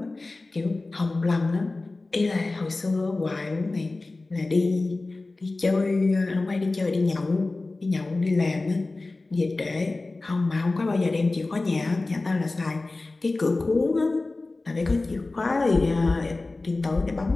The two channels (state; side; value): quieter; right; 3.3 dB